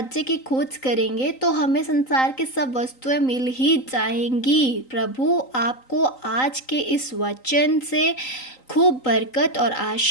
की खोज करेंगे तो हमें संसार की सब वस्तुएं मिल ही जाएंगी। प्रभु आपको आज के इस वचन से खूब बरकत और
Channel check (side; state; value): right; late; 3.9 ms